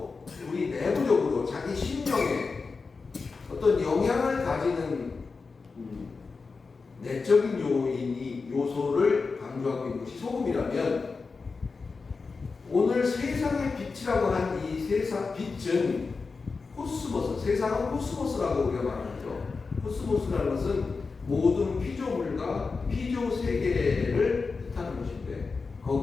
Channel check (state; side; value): quieter; right; 4.5 dB